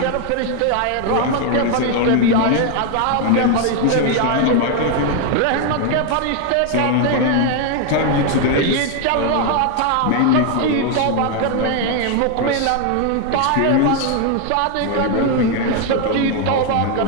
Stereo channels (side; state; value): both; different; correlation 0.01